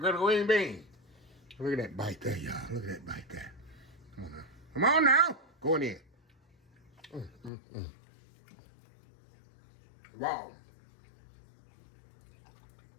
bean? Look at that bite there, y'all. Look at that bite there. Come on now. Come on now. Go in there. Wow.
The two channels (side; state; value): right; drops out; at 7.5 s